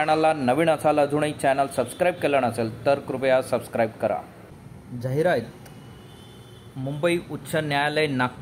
नवीन असाल, अजूनही चॅनल सबस्क्राईब केलं नसेल तर कृपया सबस्क्राईब करा। जाहिरात मुंबई उच्च न्यायालय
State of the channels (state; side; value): identical; both; correlation 1.00